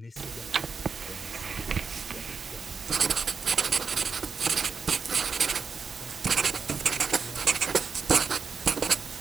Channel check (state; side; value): quieter; left; 5.7 dB